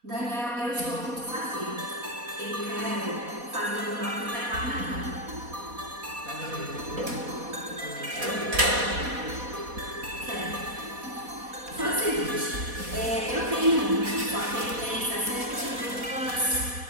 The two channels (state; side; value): late; left; 4.1 ms